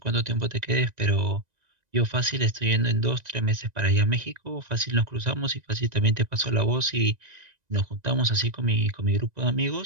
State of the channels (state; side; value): late; left; 1.9 ms